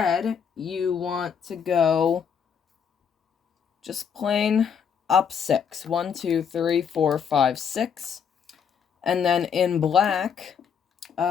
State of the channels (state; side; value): quieter; right; 7.2 dB